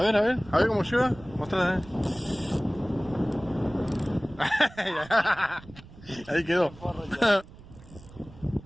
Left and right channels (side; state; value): right; noise; rumble, 20 dB below the sound